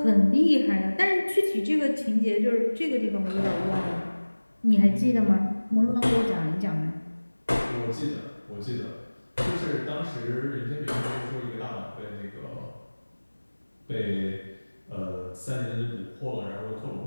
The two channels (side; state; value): both; inverted; correlation -1.00